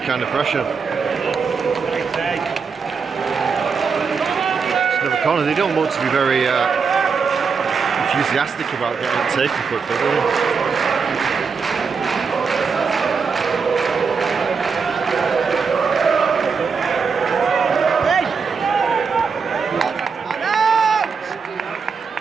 kind of pressure. It's another corner. They don't look to be very enthusiastic about getting it taken quickly, do they?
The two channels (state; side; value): quieter; left; 5.5 dB